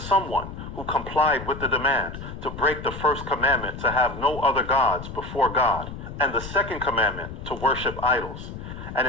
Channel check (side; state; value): left; noise; rumble, 10 dB below the sound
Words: who complied with the demand to break the 1st commandment to have no other gods before God, and the 2nd commandment to worship idols. And